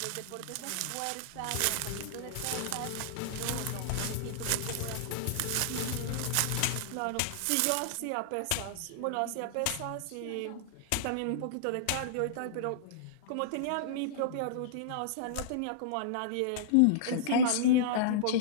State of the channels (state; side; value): different; both; correlation -0.02